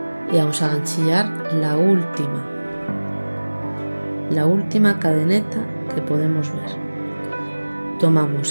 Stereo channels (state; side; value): inverted; both; correlation -1.00